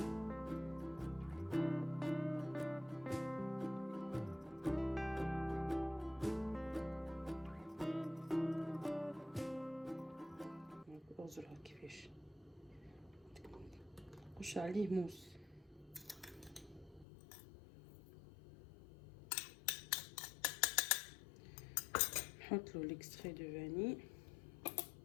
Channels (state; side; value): drops out; right; at 17.1 s